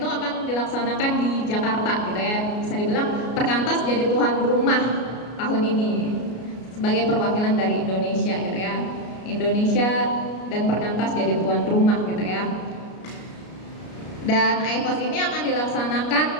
akan dilaksanakan di Jakarta gitu ya. Bisa dibilang Perkantas jadi tuan rumah tahun ini sebagai perwakilan dari Indonesia gitu ya. Indonesia dan Perkantas jadi tuan rumah gitu ya. Dan IFOS ini akan dilaksanakan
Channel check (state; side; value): late; right; 33 ms